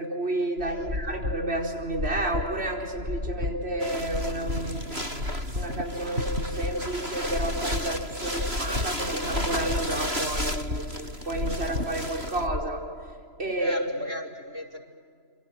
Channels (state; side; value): late; left; 3.0 ms